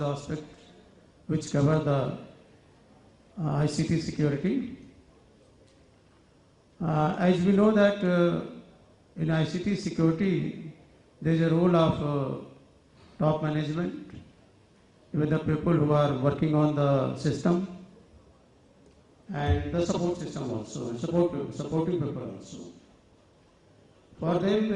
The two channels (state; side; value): identical; both; correlation 1.00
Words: aspects which cover the ICT security. As we know that in ICT security there is a role of top management, even the people who are working on the system and the support system also, and supporting people also. For them